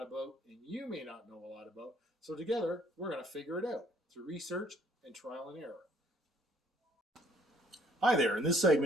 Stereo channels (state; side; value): normal; both; correlation 0.61